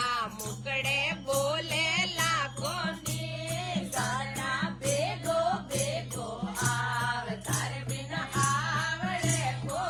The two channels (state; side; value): identical; both; correlation 1.00